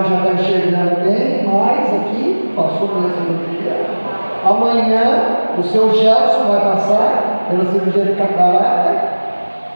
já está enxergando bem, mas aqui passou pela cirurgia. Amanhã o seu Gelson vai passar pela cirurgia de catarata.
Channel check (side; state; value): both; inverted; correlation -1.00